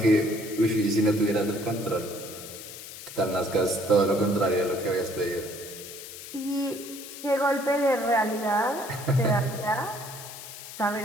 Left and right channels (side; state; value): left; noise; hiss, 13 dB below the sound